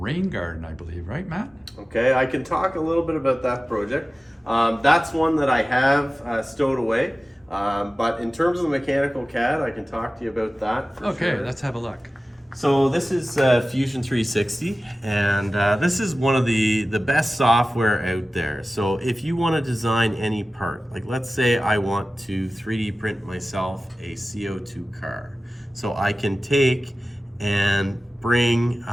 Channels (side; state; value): both; normal; correlation 0.96